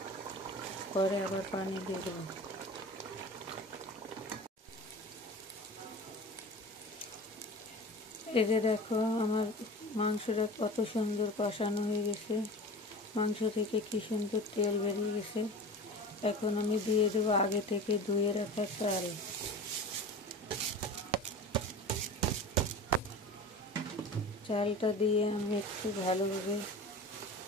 পরে আবার পানি দিয়ে দেবো। এই যে দেখো আমার মাংসটা কত সুন্দর কষানো হয়ে গেছে, মাংস থেকে কি সুন্দর তেল বেরিয়ে গেছে। এখন আমি দিয়ে দেবো আগে থেকে ধুয়ে রাখা চাল। চালটা দিয়ে আমি একটু ভালোভাবে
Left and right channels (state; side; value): normal; both; correlation 0.35